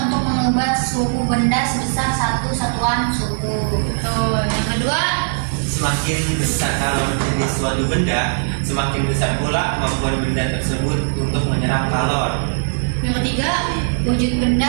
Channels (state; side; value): silent; left; digital silence